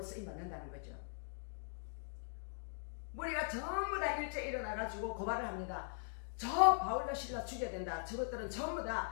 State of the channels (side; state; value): right; silent; digital silence